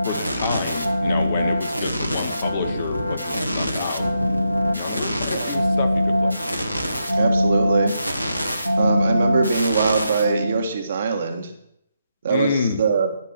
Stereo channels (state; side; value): inverted; both; correlation -0.82